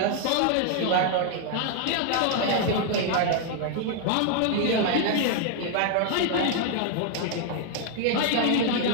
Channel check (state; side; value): different; both; correlation 0.00